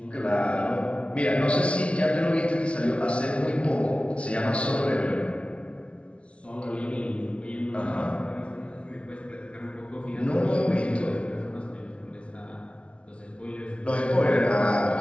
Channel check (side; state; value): right; late; 0.060 ms